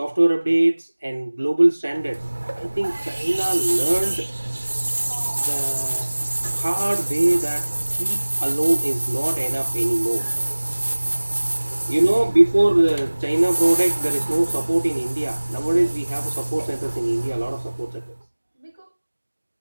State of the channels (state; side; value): inverted; both; correlation -1.00